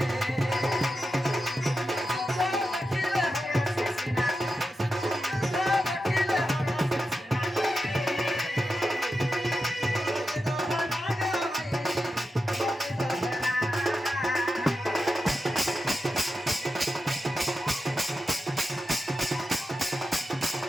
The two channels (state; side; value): normal; both; correlation 0.90